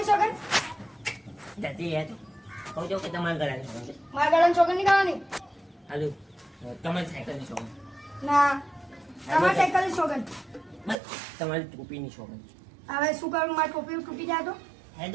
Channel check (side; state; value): left; drops out; at 11.0 s